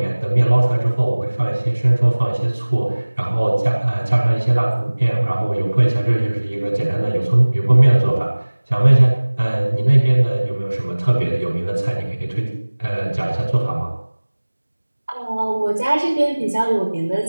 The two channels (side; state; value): both; inverted; correlation -1.00